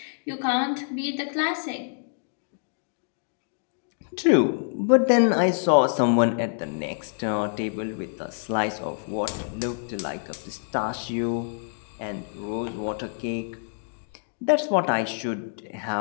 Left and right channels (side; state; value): right; silent; digital silence